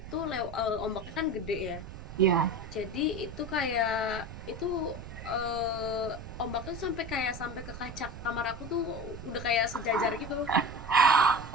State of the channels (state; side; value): noise; right; rumble, 12 dB below the sound